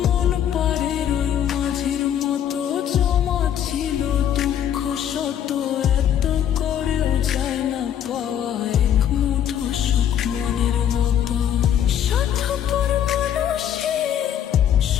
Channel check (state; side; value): quieter; right; 9.9 dB